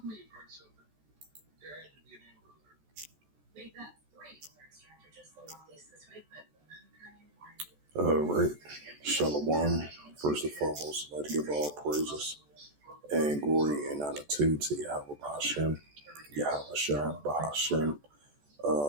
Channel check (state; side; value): late; left; 14 ms